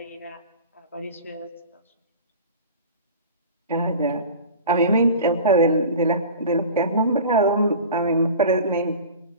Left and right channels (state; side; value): inverted; both; correlation -0.37